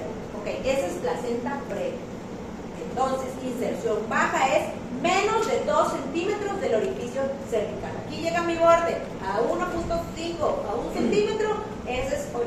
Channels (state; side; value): identical; both; correlation 1.00